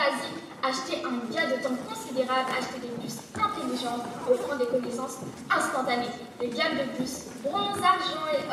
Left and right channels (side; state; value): both; identical; correlation 1.00